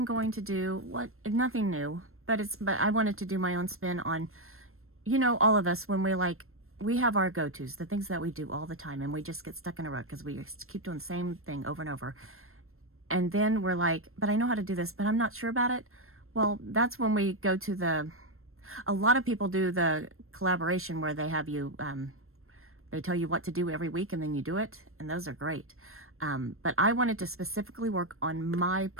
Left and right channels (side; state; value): left; late; 0.62 ms